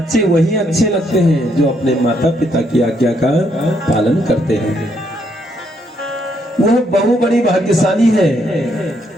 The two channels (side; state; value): both; normal; correlation 0.73